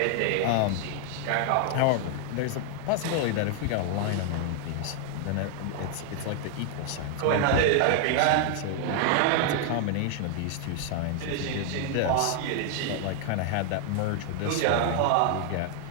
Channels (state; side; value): different; both; correlation 0.00